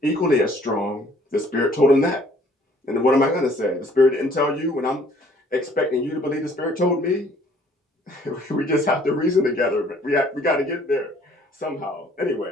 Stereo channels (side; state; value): both; normal; correlation 0.59